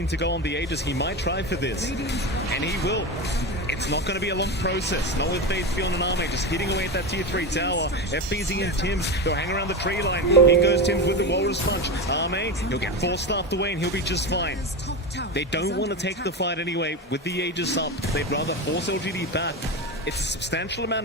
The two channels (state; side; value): normal; both; correlation 0.19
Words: to go on the Aegis. He might try for this, and he will. It's not going to be a long process. Not with Faith beyond an Arme, just hitting away at that tier 3 tower. FBZ and Tims, they'll hang around the tree line. In goes Tims with the Walrus Punch. Arme, he'll get 4-staffed away and he'll be just fine. They don't want to take the fight anyway. With the Aegis up, they'd rather force LGD back. It's a substantial